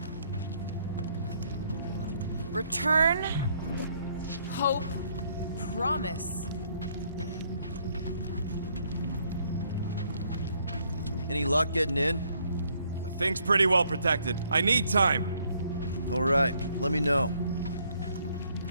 Return, hope, promise. Any luck getting in? The thing's pretty well protected. I need time. All right, let me know.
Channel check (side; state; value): both; inverted; correlation -0.68